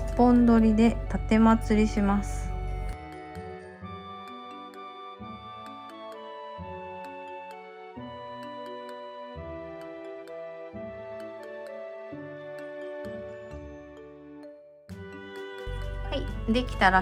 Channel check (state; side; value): identical; both; correlation 1.00